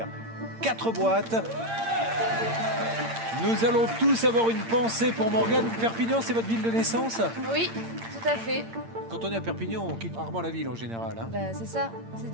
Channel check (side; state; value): left; late; 8.8 ms